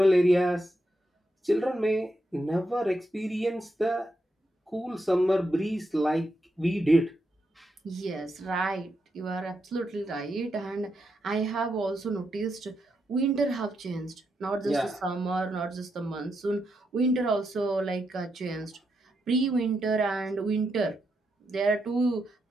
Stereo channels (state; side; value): normal; both; correlation 0.83